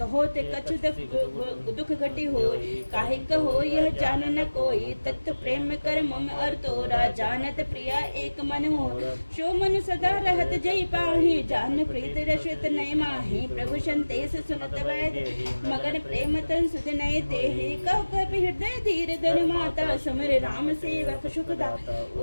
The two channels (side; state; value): both; inverted; correlation -1.00